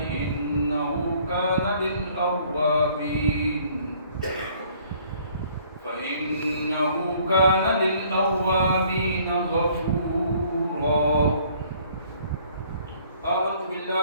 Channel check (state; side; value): inverted; both; correlation -0.59